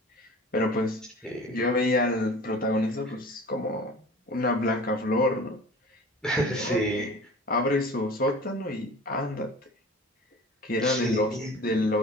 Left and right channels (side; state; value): both; normal; correlation 0.41